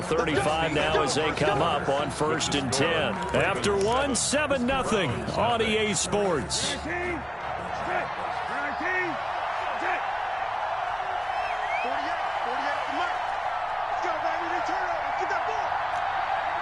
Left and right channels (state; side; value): identical; both; correlation 1.00